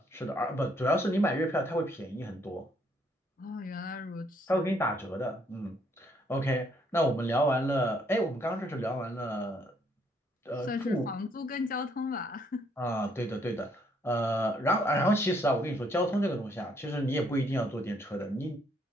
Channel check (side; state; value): both; normal; correlation 0.69